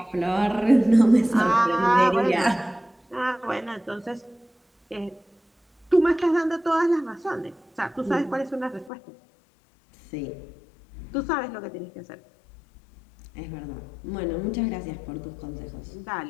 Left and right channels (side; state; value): right; drops out; at 8.9 s